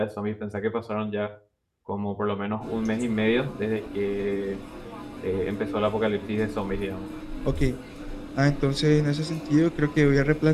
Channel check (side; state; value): both; identical; correlation 1.00